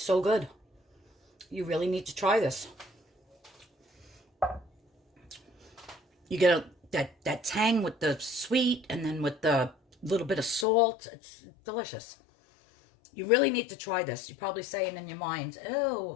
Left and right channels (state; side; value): drops out; right; at 10.7 s